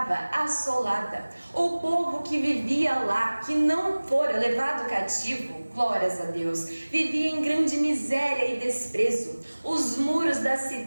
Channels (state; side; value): inverted; both; correlation -1.00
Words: assolada. O povo que vivia lá, que não fora levado cativo, glórias a Deus, vivia em grande miséria e desprezo. Os muros da